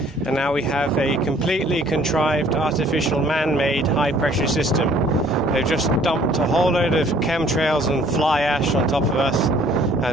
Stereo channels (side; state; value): both; normal; correlation 0.57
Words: now we have a completely contrived, artificial, man-made high-pressure system. They've just dumped a whole load of chemtrails and fly ash on top of us,